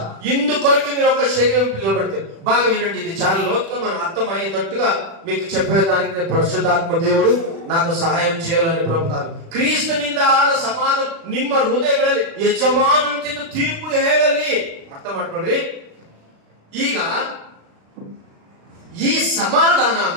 ఇందుకొరకు మీరు ఒక శరీరం పిలువబడితే. బాగా వినండి, ఇది చాలా లోతుగా మనం అర్థమయ్యేటట్టుగా మీకు చెప్పేదానికి పరిశుద్ధాత్మ దేవుడు నాకు సహాయం చేయాలని ప్రభుత్వాలు. ಕ್ರಿಸ್ತನಿಂದ ಆದ ಸಮಾಧಾನ ನಿಮ್ಮ ಹೃದಯಗಳಲ್ಲಿ ಯಜಮಾನಂತಿದ್ದು ತೀರ್ಪು ಹೇಳಲಿ. ಅರ್ಥ ಮಾಡ್ಕೊಳ್ರಿ. ಈಗ ಈ ಸಮಾಧಾನ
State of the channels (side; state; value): left; late; 36 ms